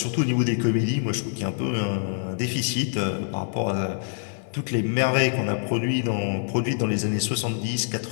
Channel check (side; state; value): right; silent; digital silence